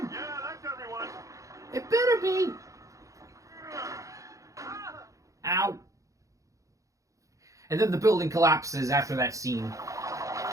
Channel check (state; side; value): late; left; 0.16 ms